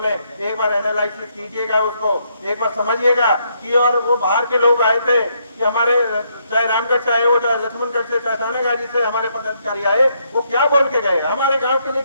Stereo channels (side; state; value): both; inverted; correlation -0.74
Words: एक बार एनालाइसिस कीजिएगा उसको, एक बार समझिएगा कि और वो बाहर के लोग आए थे कि हमारे चाहे रामगढ़ से आए हो, चाहे लक्ष्मणगढ़ से, चाहे थानागाजी से हमारे पदाधिकारी आए, वो क्या बोल के गए, हमारे गांव के लिए